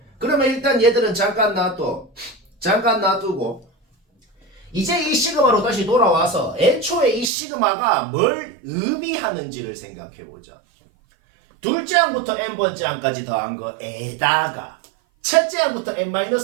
그러면 일단 얘들은 잠깐 놔두고 이제 이 시그마로 다시 돌아와서 애초에 이 시그마가 뭘 의미하는지를 생각해보자. 둘째 항부터 n번째 항까지 더한 거에다가 첫째 항부터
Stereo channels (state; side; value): drops out; left; at 7.3 s